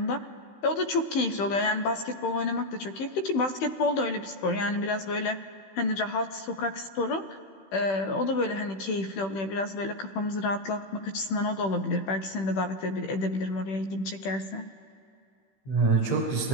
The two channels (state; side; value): late; right; 15 ms